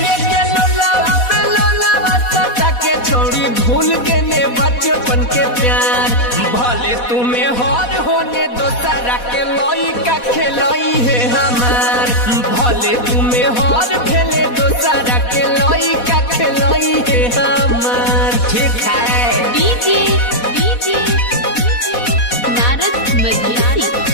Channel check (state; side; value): late; right; 4.1 ms